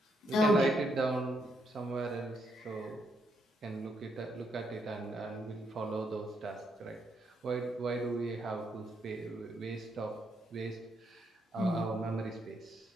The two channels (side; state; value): both; normal; correlation 0.76